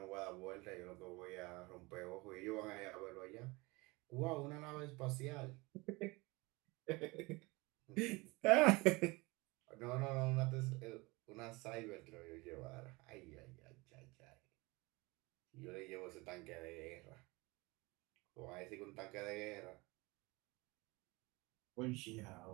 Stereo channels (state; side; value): quieter; left; 24.2 dB